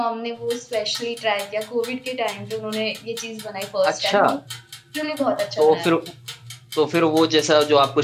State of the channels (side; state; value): both; identical; correlation 1.00